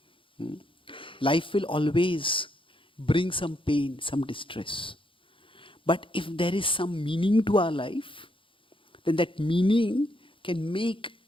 Life will always bring some pain, some distress. But if there is some meaning to our life, then that meaning can make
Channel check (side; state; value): right; late; 0.25 ms